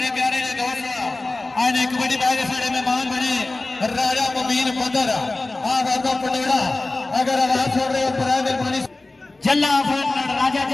प्यारे ने दोस्त आज एक बड़ी बात सारे मेहमान बने राजा मुबीन बदर वादा पटोड़ा अगर आवाज छोड़ रहे हो तो मेहरबानी जल्ला राजा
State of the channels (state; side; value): quieter; right; 3.1 dB